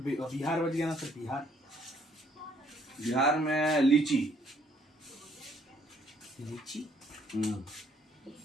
बच गया ना सर, बिहार। बिहार में लीची।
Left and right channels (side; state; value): both; normal; correlation 0.65